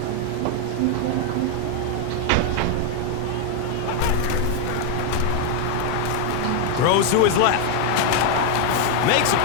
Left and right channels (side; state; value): both; different; correlation 0.01